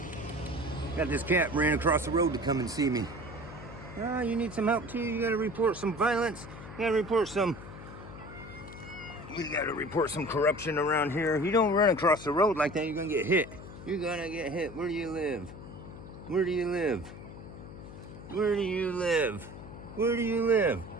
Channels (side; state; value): left; noise; hum, 14 dB below the sound